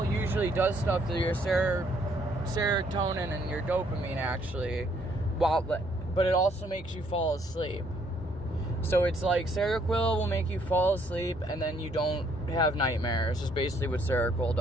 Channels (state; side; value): normal; both; correlation 0.67